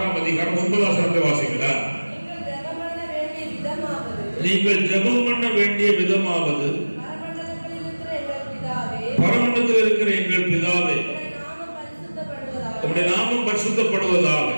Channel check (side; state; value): both; inverted; correlation -1.00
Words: அதிகாரம் 9 வசனத்தை வாசிங்களா? நீங்கள் ஜெபம் பண்ண வேண்டிய விதமாவது, பரமண்டலத்தில் இருக்கிற எங்கள் பிதாவே, உம்முடைய நாமம் பரிசுத்தப்படுவதாக,